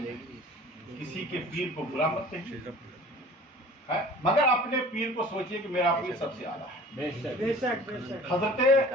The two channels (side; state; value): both; normal; correlation 0.45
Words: گی، کسی کے پیر کو برا مت کہیے، مگر اپنے پیر کو سوچئے کہ میرا پیر سب سے اعلیٰ ہے۔ حضرت